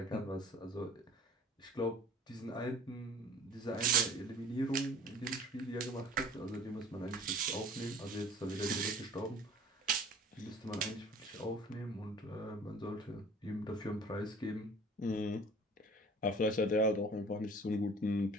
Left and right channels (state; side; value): normal; both; correlation 0.48